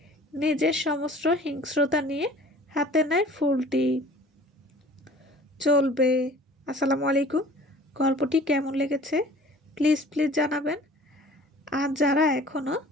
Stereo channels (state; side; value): normal; both; correlation 0.48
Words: নিজের সমস্ত হিংস্রতা নিয়ে হাতে নেয় ফুলটি। চলবে। আসসালামু আলাইকুম। গল্পটি কেমন লেগেছে প্লিজ জানাবেন। আর যারা এখনও